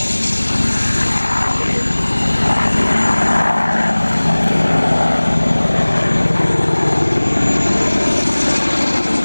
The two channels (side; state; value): both; inverted; correlation -1.00